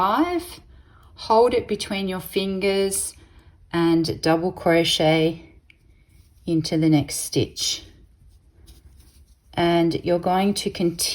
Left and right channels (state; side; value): identical; both; correlation 1.00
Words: Hold it between your fingers and double crochet into the next stitch. And you're going to